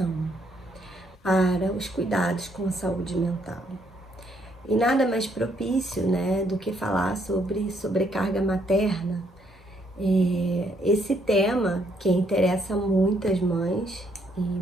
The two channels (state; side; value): normal; both; correlation 0.71